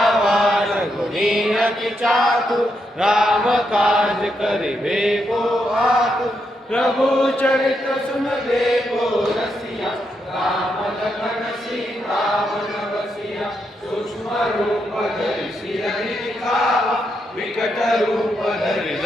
गुणी अति चातुर राम काज करिबे को आतुर प्रभु चरित्र सुनबे को रसिया राम लखन सीता वन बसिया सूक्ष्म रूप धरि सिरहि दिखावा विकट रूप धरि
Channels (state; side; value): normal; both; correlation 0.81